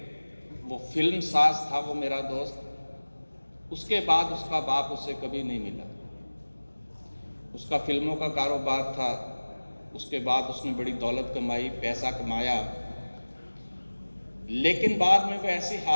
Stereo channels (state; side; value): inverted; both; correlation -1.00